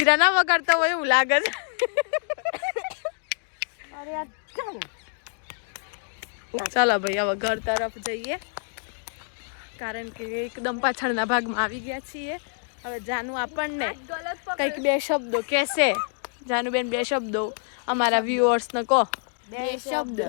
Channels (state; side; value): silent; right; 61 dB below the other